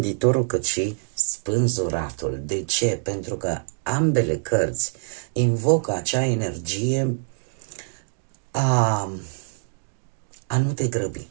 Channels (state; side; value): silent; left; digital silence